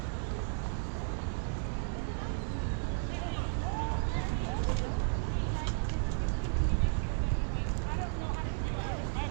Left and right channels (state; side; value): silent; left; 55 dB below the other